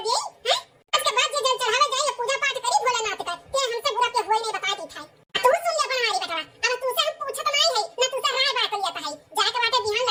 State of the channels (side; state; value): both; identical; correlation 1.00